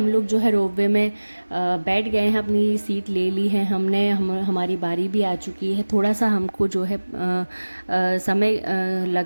लोग जो है रोपवे में बैठ गए हैं, अपनी सीट ले ली है हमने। हमारी बारी भी आ चुकी है। थोड़ा सा हमको जो है समय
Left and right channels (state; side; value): inverted; both; correlation -1.00